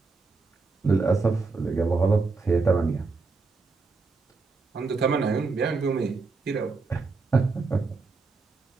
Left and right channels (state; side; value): quieter; left; 4.1 dB